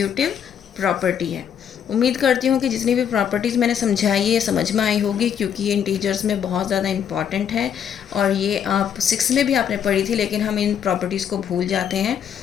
प्रॉपर्टी है। उम्मीद करती हूँ कि जितनी भी प्रॉपर्टीज़ मैंने समझाई है समझ में आई होगी, क्योंकि ये इंटीजर्स में बहुत ज़्यादा इंपॉर्टेंट है और ये आप 6 में भी आपने पढ़ी थी, लेकिन हम इन प्रॉपर्टीज़ को भूल जाते हैं।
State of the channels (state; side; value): quieter; right; 8.4 dB